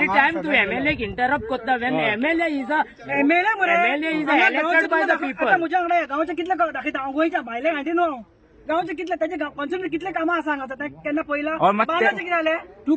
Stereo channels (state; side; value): identical; both; correlation 1.00